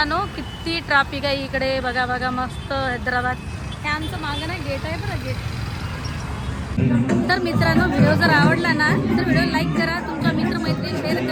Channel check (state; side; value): identical; both; correlation 1.00